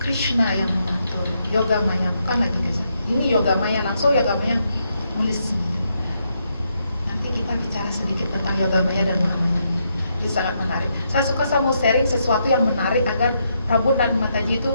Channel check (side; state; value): both; inverted; correlation -0.79